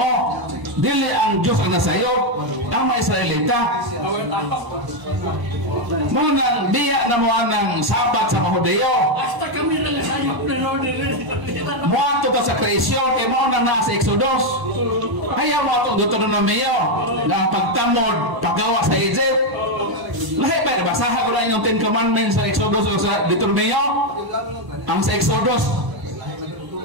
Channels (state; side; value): late; left; 1.0 ms